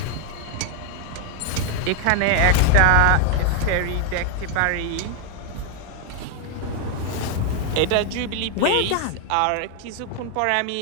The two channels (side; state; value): both; different; correlation 0.01